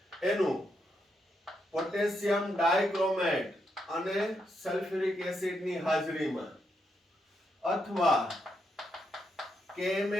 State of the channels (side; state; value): both; normal; correlation 0.81